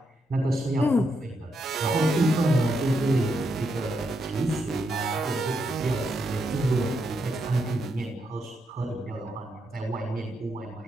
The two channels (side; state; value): both; normal; correlation 0.81